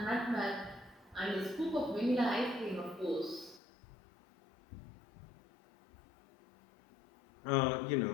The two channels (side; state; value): right; drops out; at 3.6 s